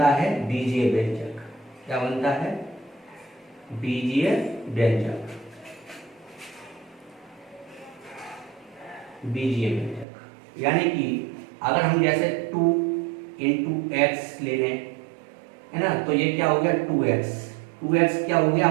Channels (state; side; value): drops out; left; at 10.1 s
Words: है? बीजीय व्यंजक। क्या बनता है? बीजीय व्यंजक। बीजीय व्यंजक यानी कि अगर हम जैसे 2 × x ले लें, है ना, तो ये क्या हो गया? 2x। 2x क्या हो गया?